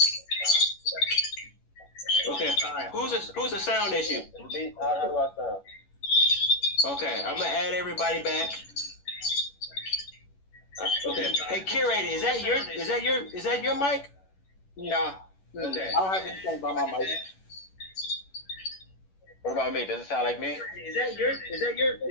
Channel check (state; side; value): late; right; 11 ms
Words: Okay, alright. Who's the sound issue? Is it me? How do I sound? Okay, I'm gonna add everybody back. Okay. Hey, curator, is that your mic? No. Okay. I don't have anything by my mic. What about me? Does it sound like me? Is